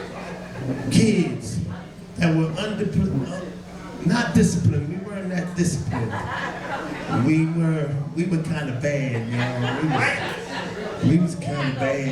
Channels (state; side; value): identical; both; correlation 1.00